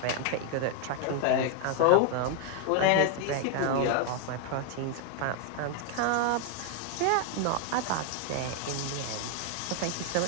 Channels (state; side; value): different; both; correlation 0.00